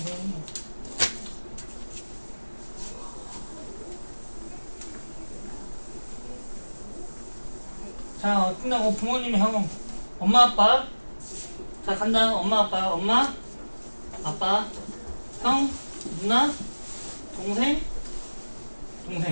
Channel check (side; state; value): both; inverted; correlation -1.00